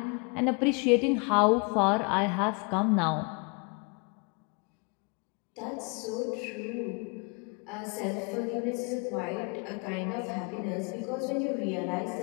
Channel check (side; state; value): right; quieter; 32.8 dB